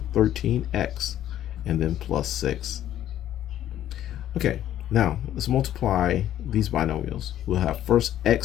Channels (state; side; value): quieter; right; 11.9 dB